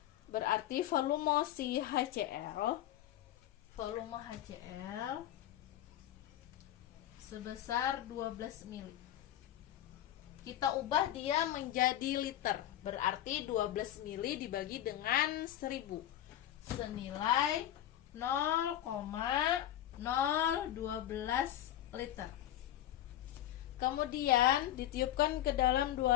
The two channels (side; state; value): right; quieter; 12.5 dB